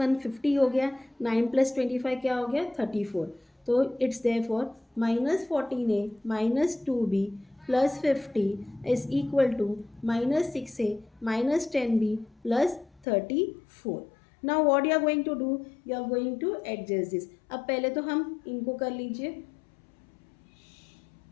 50 हो गया, 9 प्लस 25 क्या हो गया, 34। तो it's therefore -14A minus 2B plus 50 is equal to -6A minus 10B plus 34। Now what you are going to do, you are going to adjust this. अब पहले तो हम इनको कर लीजिए,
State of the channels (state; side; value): drops out; right; at 13.1 s